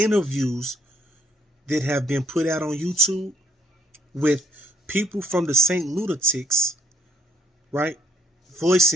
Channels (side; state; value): both; normal; correlation 0.67